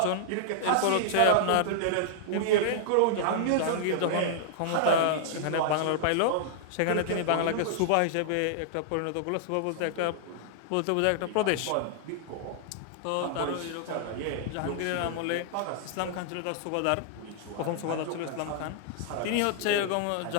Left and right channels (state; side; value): different; both; correlation -0.01